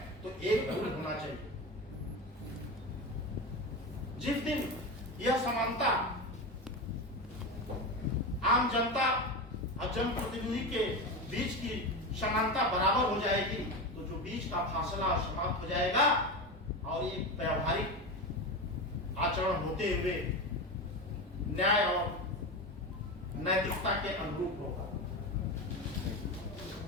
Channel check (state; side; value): normal; both; correlation 0.21